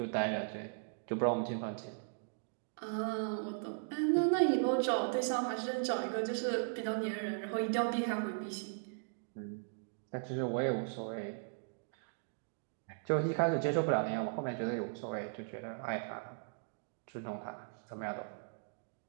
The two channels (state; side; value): silent; left; digital silence